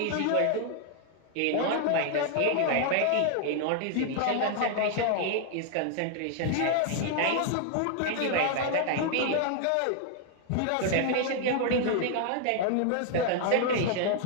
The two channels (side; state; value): both; different; correlation 0.00